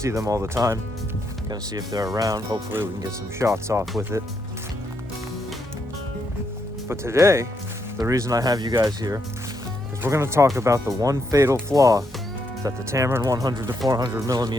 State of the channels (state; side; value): normal; both; correlation 0.79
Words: them all the time. Gonna see if they're around. Hopefully we can get some shots off with it. But today, the reason I have you guys here is we're gonna talk about the one fatal flaw that the Tamron